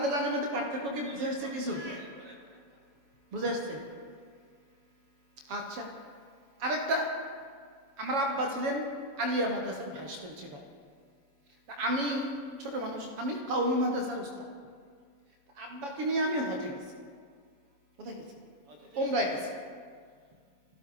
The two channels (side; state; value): left; late; 7.1 ms